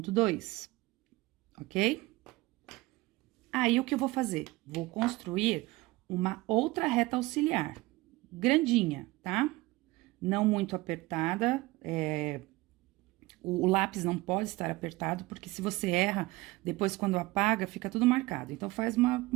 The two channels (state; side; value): quieter; left; 20.6 dB